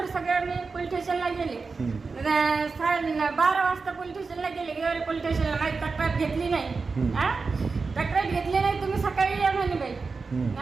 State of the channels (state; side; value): quieter; left; 4.5 dB